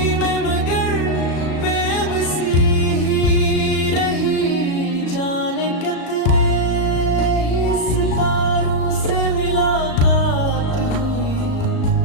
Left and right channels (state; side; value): late; right; 37 ms